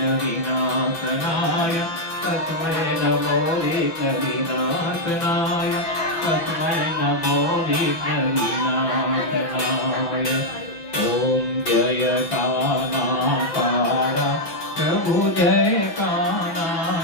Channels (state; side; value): late; right; 6.0 ms